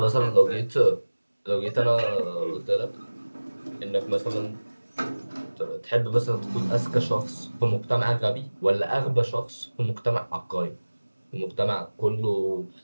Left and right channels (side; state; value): both; inverted; correlation -1.00